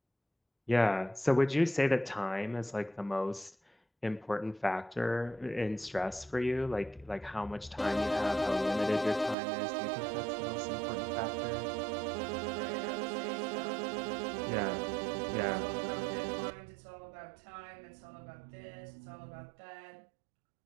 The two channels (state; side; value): drops out; left; at 9.3 s